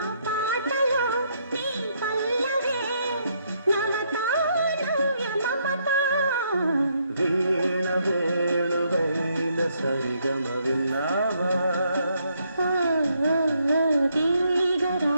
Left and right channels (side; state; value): both; inverted; correlation -0.74